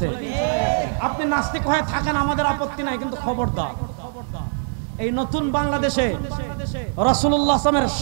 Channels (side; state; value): left; silent; digital silence